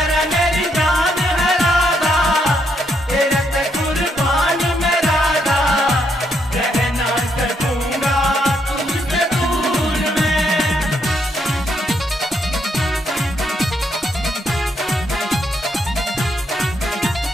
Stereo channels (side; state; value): both; normal; correlation 0.76